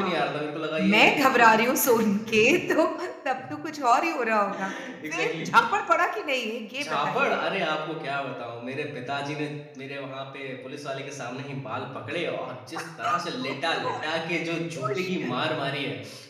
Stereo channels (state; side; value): identical; both; correlation 1.00